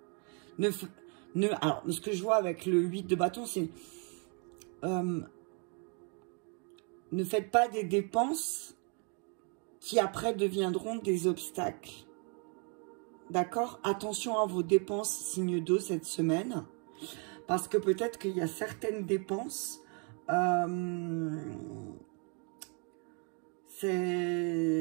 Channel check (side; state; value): left; quieter; 37.3 dB